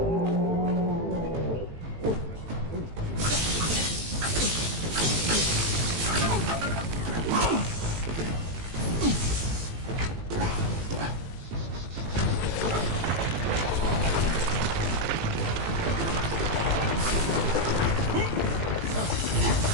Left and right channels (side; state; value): left; late; 18 ms